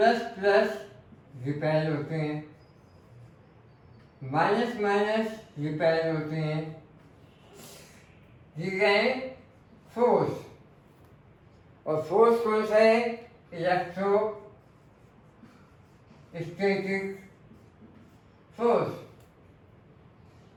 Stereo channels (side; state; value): both; identical; correlation 1.00